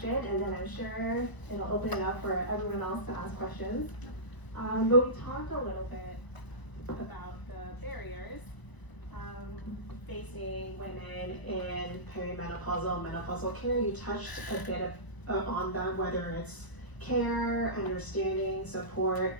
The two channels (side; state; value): right; late; 1.0 ms